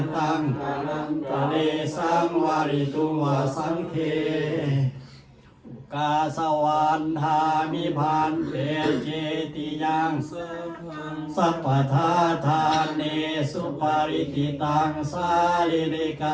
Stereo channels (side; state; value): both; identical; correlation 1.00